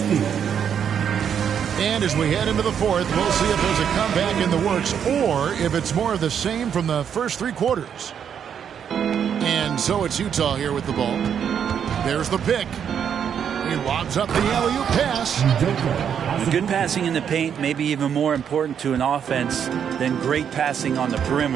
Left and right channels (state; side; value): quieter; left; 8.2 dB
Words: And as we head into the fourth, we'll see if there's a comeback in the works or if it's more of the same from the first 3 quarters. And so it's Utah here with the ball. There's the pick. He lobs up the alley-oop pass. Good passing in the paint, maybe even more important to an offense than great passing on the